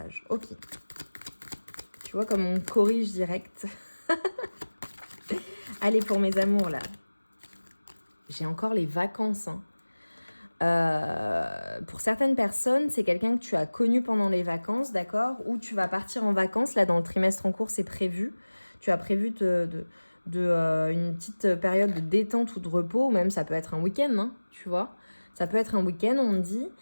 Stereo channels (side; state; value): both; inverted; correlation -1.00